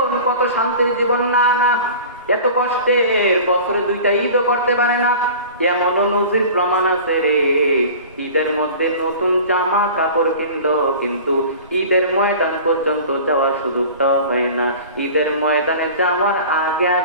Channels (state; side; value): inverted; both; correlation -0.40